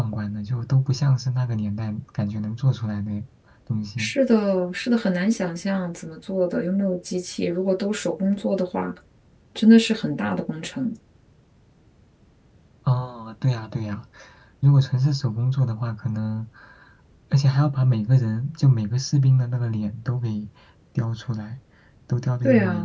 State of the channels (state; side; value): identical; both; correlation 1.00